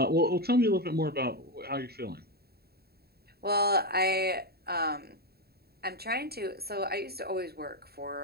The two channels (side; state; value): left; late; 0.46 ms